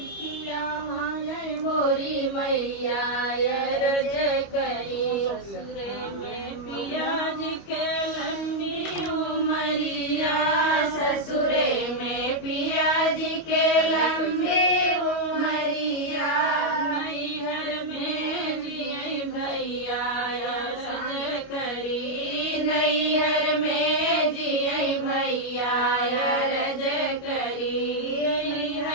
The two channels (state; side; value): late; right; 25 ms